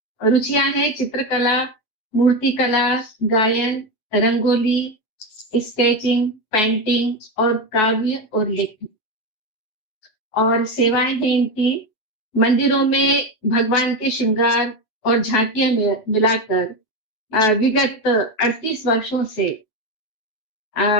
रुचियां हैं चित्रकला, मूर्तिकला, गायन, रंगोली, स्केचिंग, पेंटिंग और काव्य और लेखन। और सेवाएं हैं इनकी मंदिरों में भगवान के श्रृंगार और झांकियां मिलाकर विगत 38 वर्षों से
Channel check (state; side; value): late; right; 9.3 ms